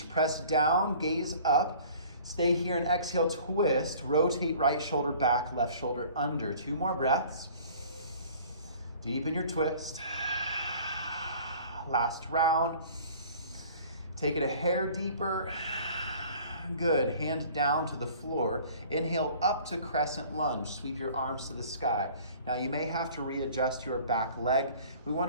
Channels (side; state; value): both; inverted; correlation -0.49